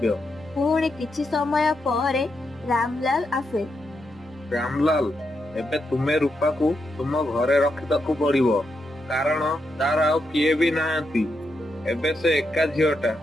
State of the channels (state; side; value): normal; both; correlation 0.83